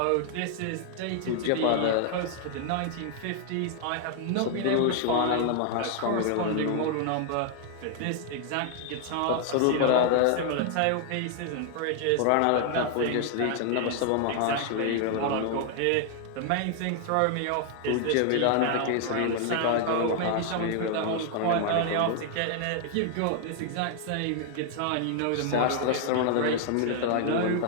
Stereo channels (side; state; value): both; different; correlation 0.00